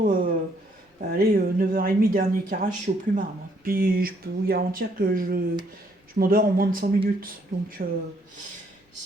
allez, 9h30, dernier carrage, je suis au plumard, moi. Puis je peux vous garantir que je m'endors en moins de 100 minutes. Donc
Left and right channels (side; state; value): both; normal; correlation 0.69